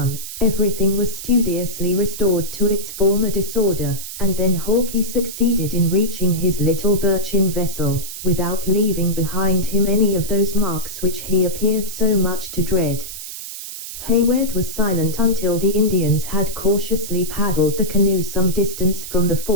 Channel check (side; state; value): right; noise; hiss, 10 dB below the sound